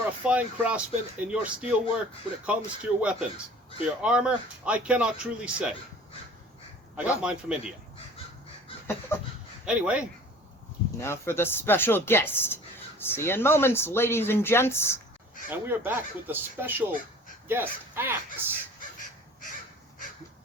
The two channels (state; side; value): normal; both; correlation 0.46